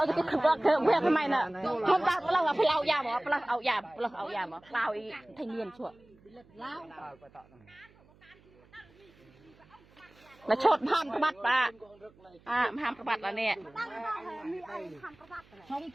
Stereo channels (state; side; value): noise; right; hum, 28 dB below the sound